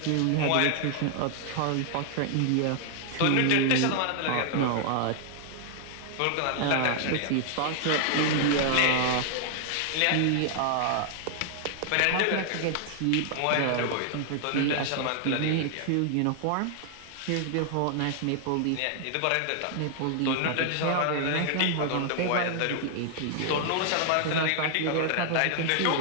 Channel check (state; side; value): different; both; correlation 0.00